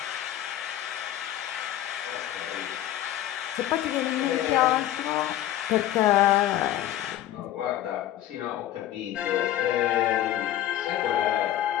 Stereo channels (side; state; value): right; quieter; 13.0 dB